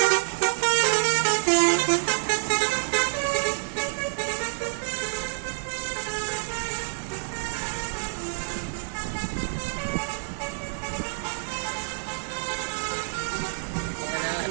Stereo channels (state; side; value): silent; left; 56 dB below the other